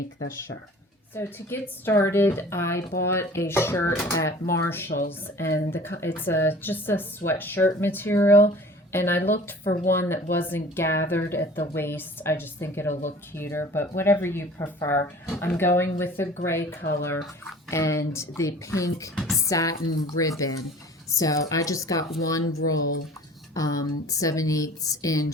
this shirt. So to get started, I bought a shirt at Marshall's, and it's just a sweatshirt material, and I looked for one that wasn't gathered at the waist. I just think it'll look cuter, but whatever you prefer. I'm going with the gray color and the pink satin ribbon. So I just got one roll, 7/8 inch,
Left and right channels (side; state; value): both; normal; correlation 0.45